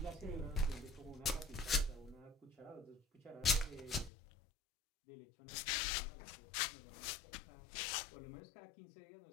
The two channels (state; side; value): drops out; right; at 4.1 s